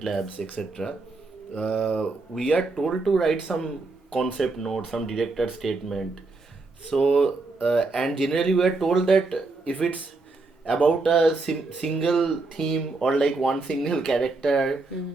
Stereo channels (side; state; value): left; quieter; 3.6 dB